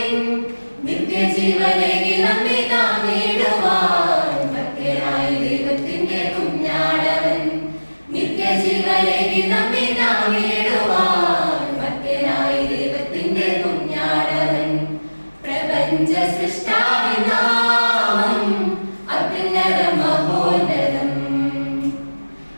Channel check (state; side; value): inverted; both; correlation -1.00